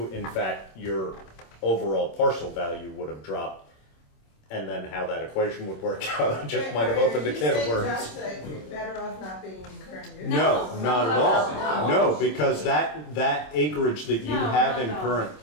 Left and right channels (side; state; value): right; late; 26 ms